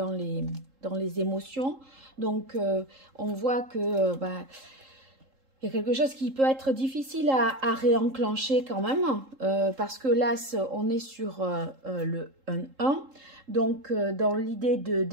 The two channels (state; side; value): late; left; 3.7 ms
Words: les émotions. Donc, on voit que il y a quelque chose qui peut être difficile à réenclencher quand même, parce que l'as, on est sur le 1. Donc, dans l'idée